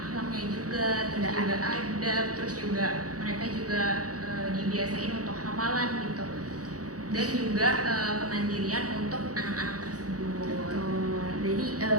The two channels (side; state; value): left; late; 0.67 ms